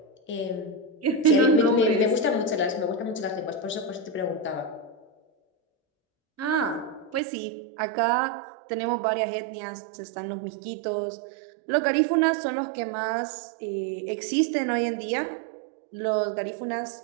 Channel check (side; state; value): left; drops out; at 7.2 s